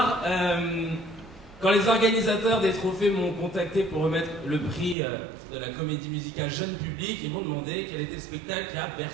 Quand les organisateurs des trophées m'ont contacté pour remettre le prix de la comédie musicale jeune public, ils m'ont demandé quel était le spectacle qui a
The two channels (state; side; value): drops out; left; at 5.0 s